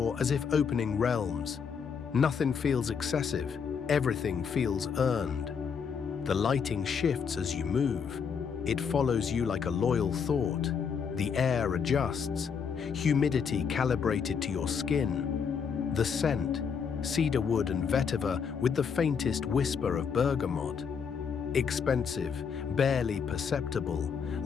as if opening realms. Nothing feels excessive, everything feels earned. The lighting shifts as you move. It follows you like a loyal thought. The air adjusts, humidity calibrated to your skin. The scent, cedarwood and vetiver with the faintest whisper of bergamot. Expensive, barely perceptible,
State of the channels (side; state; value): right; quieter; 6.5 dB